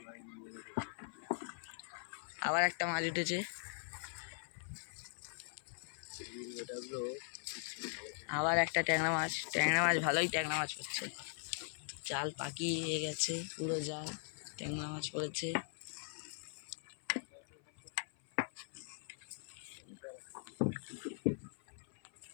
আবার একটা মাছ উঠেছে, আবার একটা ট্যাংরা মাছ ভালোই ট্যাংরা মাছ পড়ছে। জাল পাকিয়ে গেছে, পুরো জাল ট্যাংরা মাছ পড়েছে।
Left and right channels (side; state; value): right; silent; 51 dB below the other